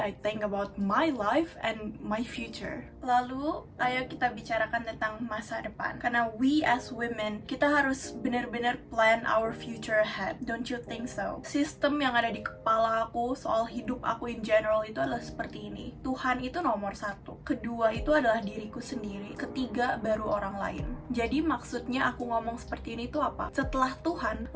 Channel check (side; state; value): both; identical; correlation 1.00